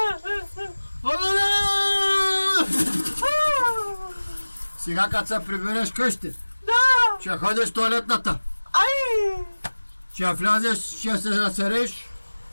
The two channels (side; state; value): both; inverted; correlation -1.00